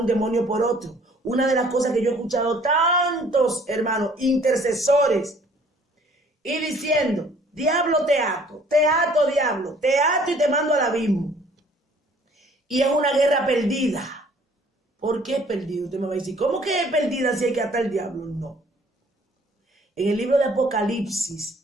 demonio por otro. Una de las cosas que yo he escuchado tantos hermanos, intercesores, y diciendo, diablo te ato, diablo, te ato y te mando al abismo. Y es una guerra perdida. ¿Por qué es perdida? Usted me va a decir, ¿cómo que es perdida si hay que atar al diablo? No. En el libro de Apocalipsis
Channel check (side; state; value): both; normal; correlation 0.56